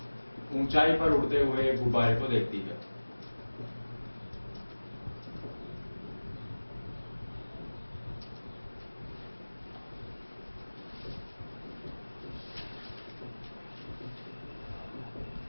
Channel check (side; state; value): both; inverted; correlation -1.00